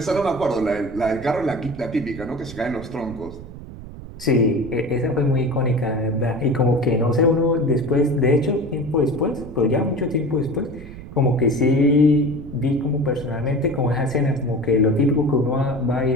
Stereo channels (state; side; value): noise; right; rumble, 14 dB below the sound